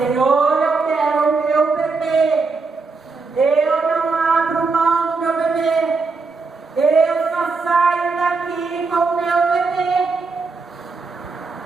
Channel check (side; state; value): left; quieter; 4.2 dB